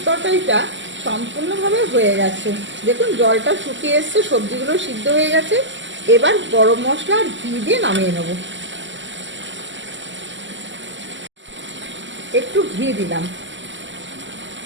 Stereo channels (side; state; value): left; late; 0.54 ms